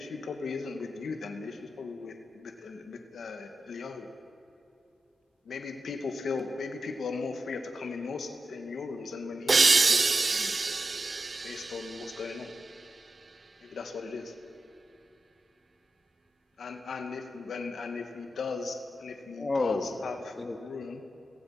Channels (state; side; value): normal; both; correlation 0.90